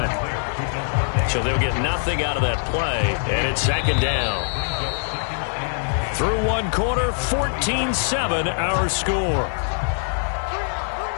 So they'll get nothing out of that play, and it's 2nd down. Through one quarter, 14-7 our score.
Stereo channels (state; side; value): silent; right; 57 dB below the other